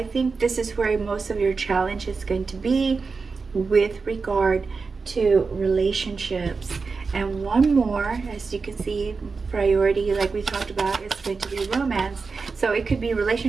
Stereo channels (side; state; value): left; quieter; 4.6 dB